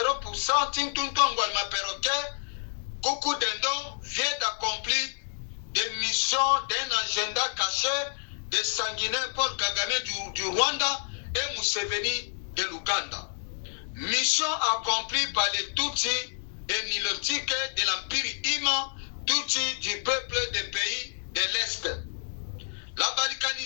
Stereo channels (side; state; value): right; silent; digital silence